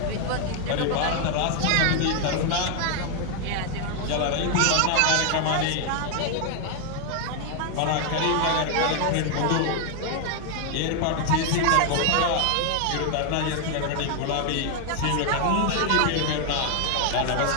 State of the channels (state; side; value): different; both; correlation 0.00